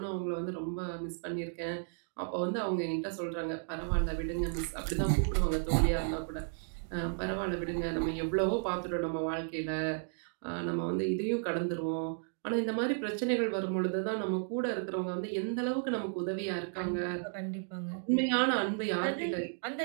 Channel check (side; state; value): left; silent; digital silence